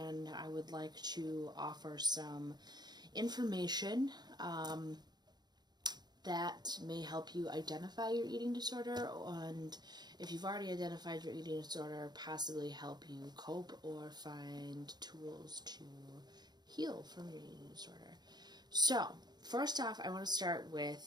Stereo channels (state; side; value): late; left; 0.20 ms